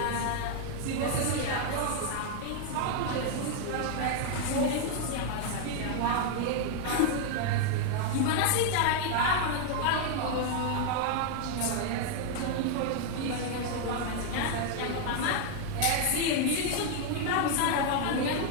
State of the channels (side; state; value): both; different; correlation 0.00